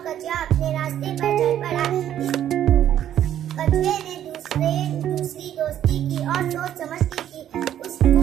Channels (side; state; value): left; quieter; 10.9 dB